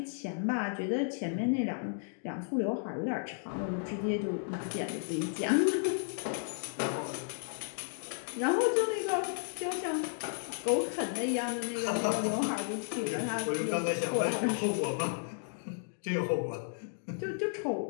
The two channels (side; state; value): right; silent; digital silence